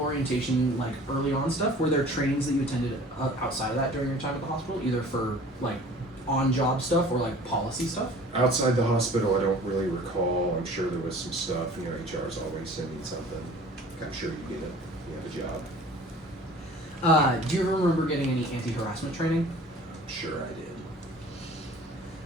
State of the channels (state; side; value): normal; both; correlation 0.46